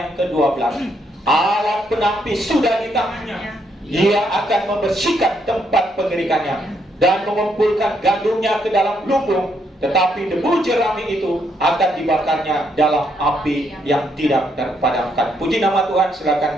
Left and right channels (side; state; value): both; normal; correlation 0.75